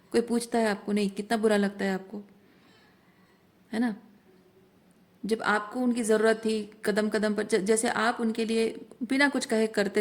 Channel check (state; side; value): identical; both; correlation 1.00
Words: कोई पूछता है आपको नहीं, कितना बुरा लगता है आपको, है ना। जब आपको उनकी ज़रूरत थी कदम कदम पर, जैसे आप उनके लिए बिना कुछ कहे